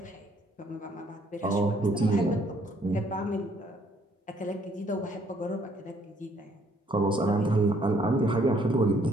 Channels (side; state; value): both; normal; correlation 0.66